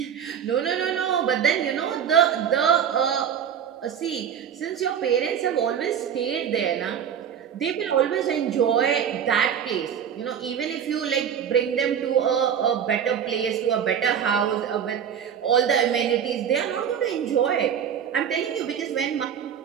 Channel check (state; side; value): quieter; left; 8.4 dB